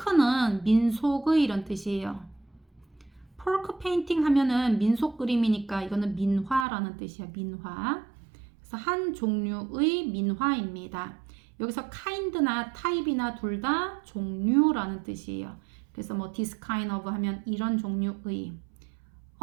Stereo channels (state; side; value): drops out; left; at 6.7 s